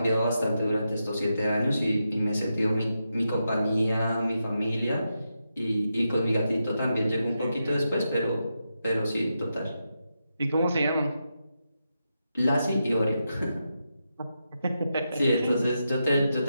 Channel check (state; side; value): inverted; both; correlation -0.86